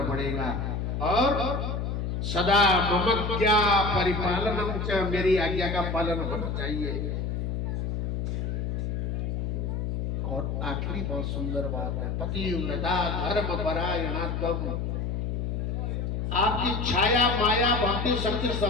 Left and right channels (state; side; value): noise; left; hum, 1 dB below the sound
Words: पड़ेगा। और सदा ममज्ञा परिपालनम च, मेरी आज्ञा का पालन होना चाहिए। और आखिरी बहुत सुंदर बात है, पतिव्रता धर्म परायणात्म, आपकी छाया माया भक्ति शक्ति